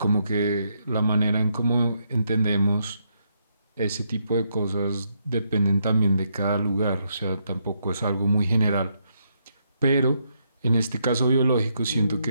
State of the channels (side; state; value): both; inverted; correlation -0.77